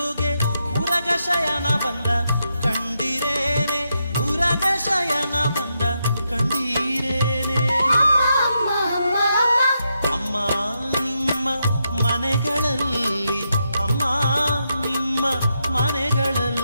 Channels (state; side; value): inverted; both; correlation -0.83